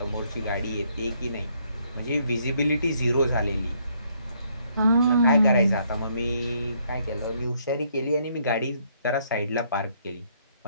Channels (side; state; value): both; inverted; correlation -0.70